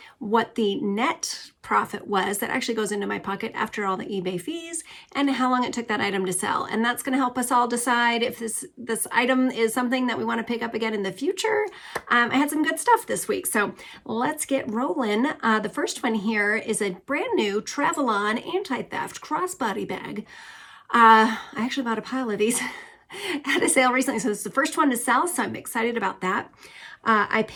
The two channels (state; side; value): identical; both; correlation 1.00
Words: what the net profit was that actually goes into my pocket after all the eBay fees, and how long it took that item to sell. And that's going to help us all decide if this item is something that we want to pick up again in the future. I had some good stuff this week, so let's get rolling. The first one here is a brand new Travel-On anti-theft crossbody bag. I actually bought a pile of these at a sale recently, so this is the first one to sell, so I'm excited about that. I